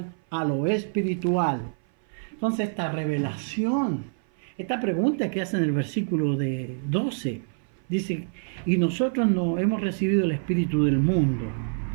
a lo espiritual. Entonces esta revelación, esta pregunta que hace en el versículo de 12, dice, y nosotros no hemos recibido el Espíritu del mundo,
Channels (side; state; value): left; silent; 58 dB below the other